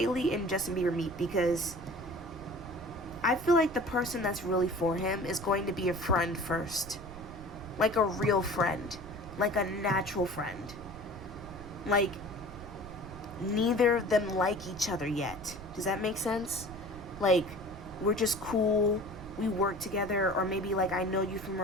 and Justin Bieber meet? Because I feel like the person that's really for him is going to be a friend first. Like a real friend. Like a natural friend. Like, neither of them like each other yet. Does that make sense? Like, we're just cool. We work together. Or maybe, like, I know you from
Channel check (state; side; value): noise; right; rumble, 14 dB below the sound